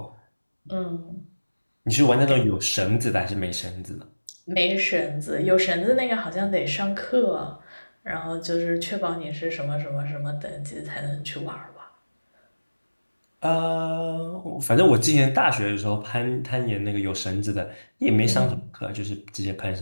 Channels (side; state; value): both; inverted; correlation -1.00